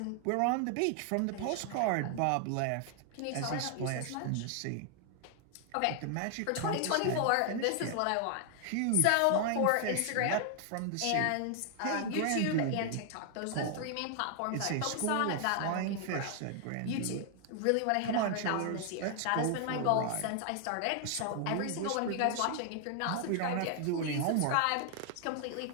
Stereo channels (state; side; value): different; both; correlation 0.00